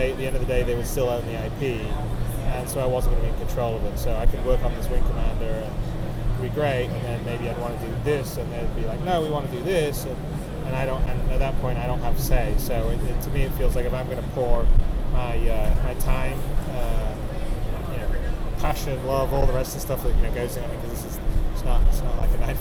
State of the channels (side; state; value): both; identical; correlation 1.00